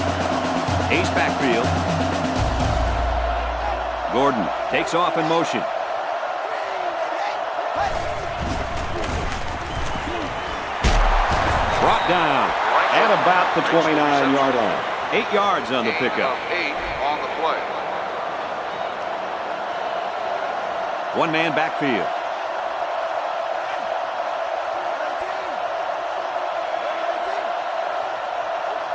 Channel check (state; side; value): identical; both; correlation 1.00